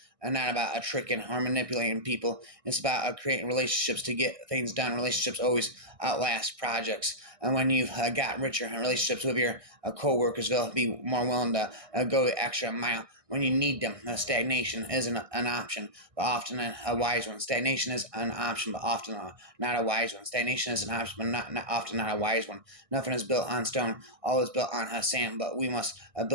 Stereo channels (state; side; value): late; left; 1.6 ms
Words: not about tricking or manipulating people. It's about creating relationships to get things done. Relationships always outlast projects. And when you've got richer relationships with your coworkers, they'll be more willing to go the extra mile when you need them. Stagnation isn't an option, but often a wise one. Stagnation is an option, but often not a wise one. Stagnation is an option, but not often not a wise one. Nothing is built on stone. All is built on sand, but we must